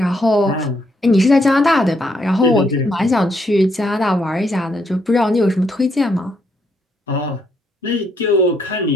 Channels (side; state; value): both; normal; correlation 0.74